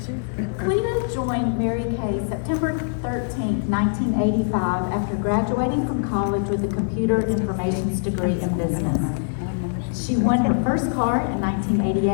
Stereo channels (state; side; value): silent; right; digital silence